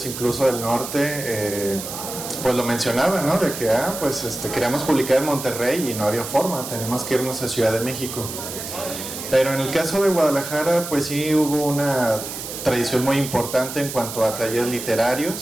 incluso del norte, pues lo mencionaban, ¿no? De que, pues queríamos publicar en Monterrey y no había forma, tenemos que irnos a Ciudad de México. Pero en el caso de Guadalajara, pues sí hubo una tradición muy importante en cuanto a talleres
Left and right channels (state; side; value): noise; right; hiss, 8 dB below the sound